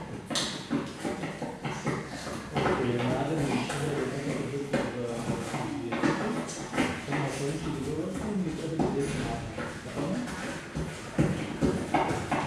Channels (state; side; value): identical; both; correlation 1.00